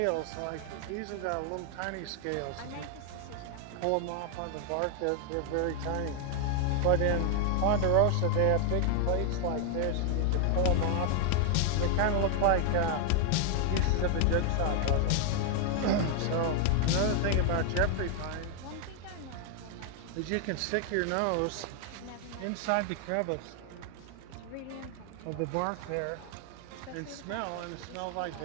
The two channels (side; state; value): both; different; correlation 0.00